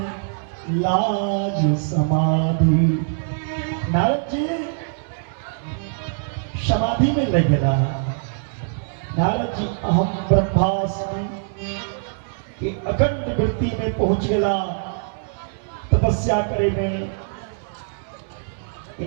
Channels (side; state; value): left; silent; 64 dB below the other